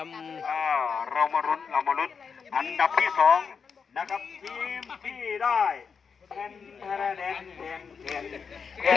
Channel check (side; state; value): right; quieter; 6.0 dB